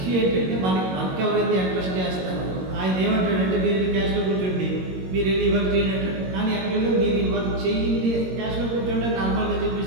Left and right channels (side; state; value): left; late; 22 ms